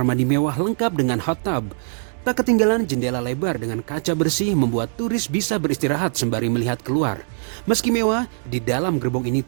mandi mewah lengkap dengan hot tub. Tak ketinggalan jendela lebar dengan kaca bersih membuat turis bisa beristirahat sembari melihat keluar. Meski mewah, di dalam gerbong ini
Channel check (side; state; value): left; silent; 64 dB below the other